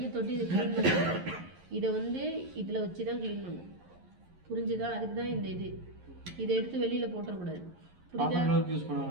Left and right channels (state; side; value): late; left; 11 ms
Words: தொட்டு இதை க்ளீன் பண்ண. இதை வந்து இதில் வச்சு தான் க்ளீன் பண்ணும். புரிஞ்சுதா? அதுக்கு தான் இந்த இது. இதை எடுத்து வெளியில் போட்டுறக்கூடாது. புரியுதா? யூஸ்